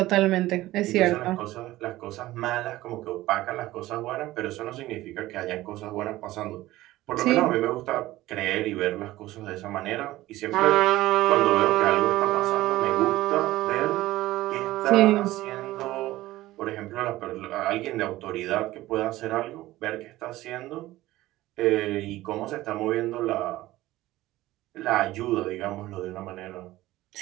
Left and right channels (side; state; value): left; quieter; 16.7 dB